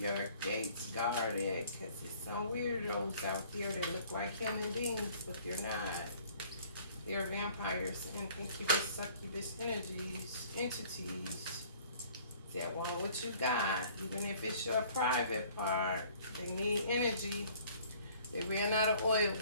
gates guarded, because there's some weirdos out there that look like human beings, but they're not. They're vampires and incubus, succubus entities that want what you got, even if it's your private part. They need energy. They ran out of oil,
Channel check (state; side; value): inverted; both; correlation -0.54